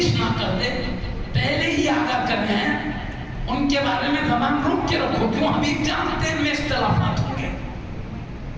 نہ کر دے. پہلے ہی آگاہ کر رہے ہیں ان کے بارے میں زبان روک کے رکھو. کیوں؟ حبیب جانتے ہیں میں اختلافات ہوں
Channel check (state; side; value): identical; both; correlation 1.00